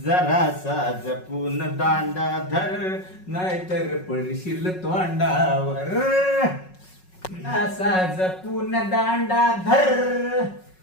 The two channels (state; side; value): late; right; 5.4 ms